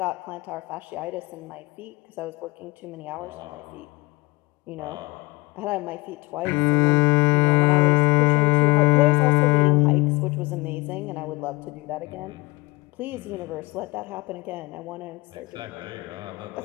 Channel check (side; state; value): right; quieter; 23.5 dB